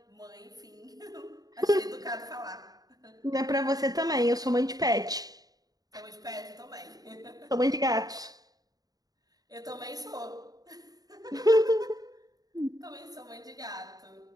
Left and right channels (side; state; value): left; late; 0.18 ms